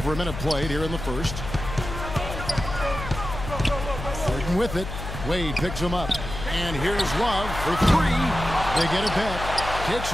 a minute played here in the first. Harden with it. Wade picks him up. And here's Love for 3. They get it back. Kicks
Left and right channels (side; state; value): left; noise; hum, 8 dB below the sound